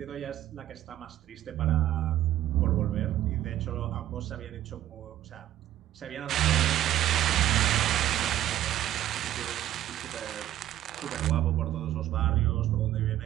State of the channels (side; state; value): left; quieter; 13.0 dB